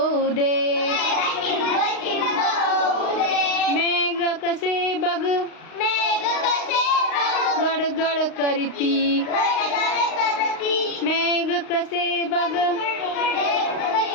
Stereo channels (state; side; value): late; right; 35 ms